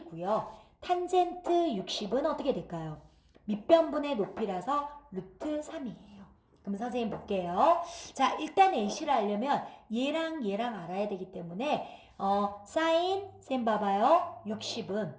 탄젠트 60은 어떻게 될까요? 밑변분의 높이라서 루트 3이에요. 그럼 선생님 볼게요. 자, 일단 AC를 알려면 얘랑 얘랑 알아야 되기 때문에 사인 셈 봐봐요. 60은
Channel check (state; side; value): identical; both; correlation 1.00